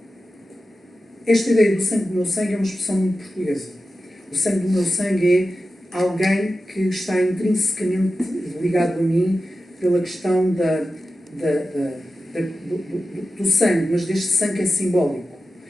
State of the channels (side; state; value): both; normal; correlation 0.93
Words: Esta ideia do sangue do meu sangue é uma expressão muito portuguesa. O sangue do meu sangue é alguém que está intrinsecamente ligado a mim pela questão do sangue, mas deste sangue é simbólico.